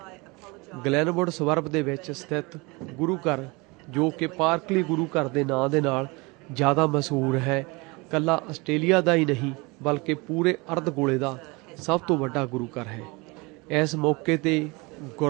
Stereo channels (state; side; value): quieter; left; 26.3 dB